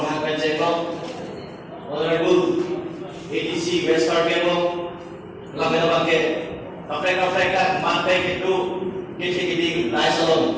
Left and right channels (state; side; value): identical; both; correlation 1.00